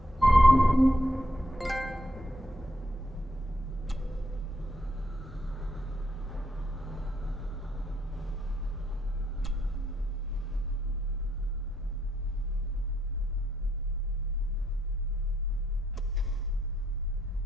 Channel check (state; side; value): normal; both; correlation 0.75